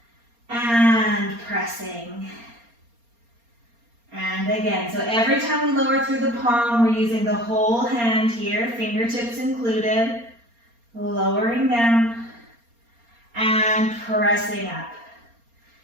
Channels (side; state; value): left; late; 4.3 ms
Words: and pressing. And again, so every time we lower through the palm, we're using the whole hand here, fingertips included, lowering down and pressing up.